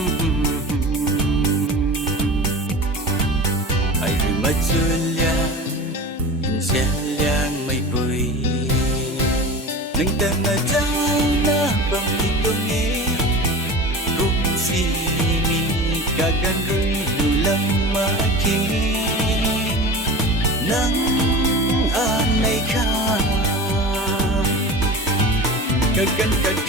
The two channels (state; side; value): normal; both; correlation 0.33